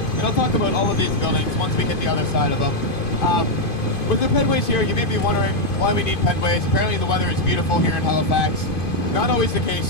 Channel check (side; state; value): right; late; 2.5 ms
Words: And I'll talk about all of these buildings once we hit the other side of them. With the pedways here, you may be wondering why we need pedways. Apparently the weather is beautiful here in Halifax. Not always the